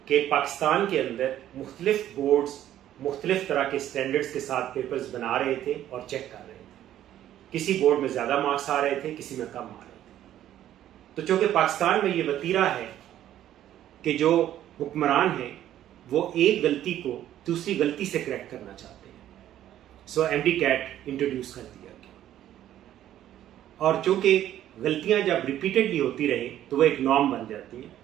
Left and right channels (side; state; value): left; quieter; 12.1 dB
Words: कि पाकिस्तान के अंदर मुख्तलिफ बोर्ड्स मुख्तलिफ तरह के स्टैंडर्ड्स के साथ पेपर्स बना रहे थे और चेक कर रहे थे। किसी बोर्ड में ज़्यादा मार्क्स आ रहे थे, किसी में कम आ रहे थे। तो चूँकि पाकिस्तान में ये वतीरा है कि जो हुक्मरान हैं वो एक गलती को दूसरी गलती से करेक्ट करना चाहते हैं, सो एमडी कैट इंट्रोड्यूस कर दिया गया। और चूँकि गलतियाँ जब रिपीटेडली होती रहे तो वो एक नॉर्म बन जाती हैं,